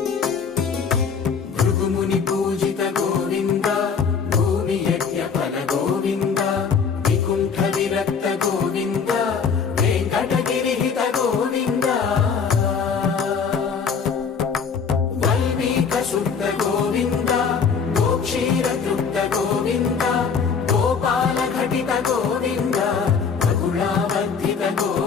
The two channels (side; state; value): right; quieter; 6.0 dB